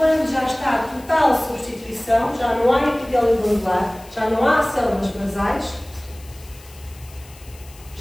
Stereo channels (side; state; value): left; noise; hiss, 23 dB below the sound